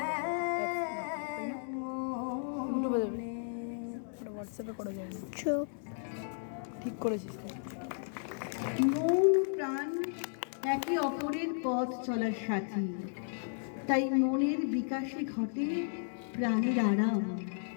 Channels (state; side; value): silent; right; digital silence